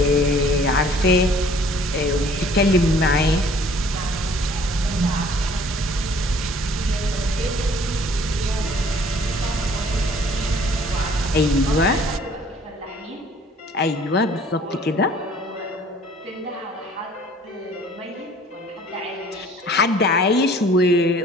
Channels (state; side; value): normal; both; correlation 0.54